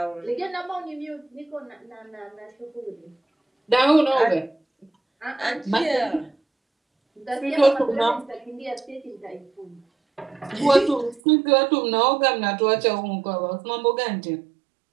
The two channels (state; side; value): drops out; left; at 11.2 s